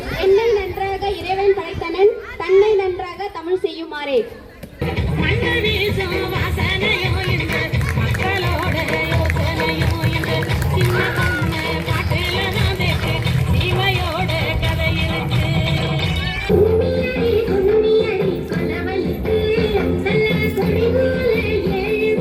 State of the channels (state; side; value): identical; both; correlation 1.00